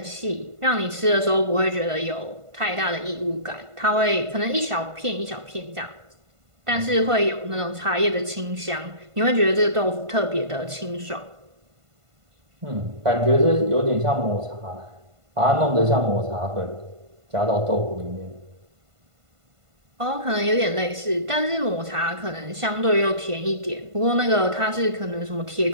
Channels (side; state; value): left; late; 1.5 ms